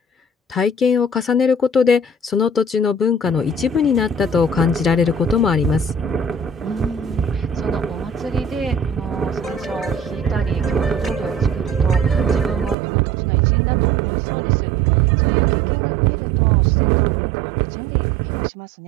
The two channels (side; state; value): left; drops out; at 12.8 s